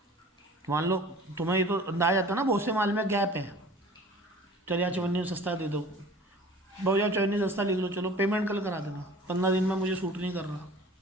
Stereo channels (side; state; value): both; normal; correlation 0.45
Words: मान लो तुम्हें ये तो अंदाज आता ना बहुत से माल में गैप है, चल यार चवन्नी सस्ता दे दो, बहुत यार चवन्नी सस्ता लिख लो, चलो पेमेंट कल करा देना, 15 दिन में मुझे सूट नहीं कर रहा,